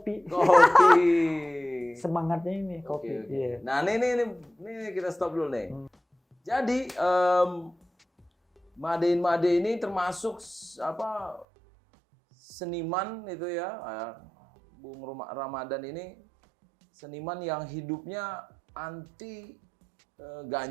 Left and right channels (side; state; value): left; drops out; at 11.5 s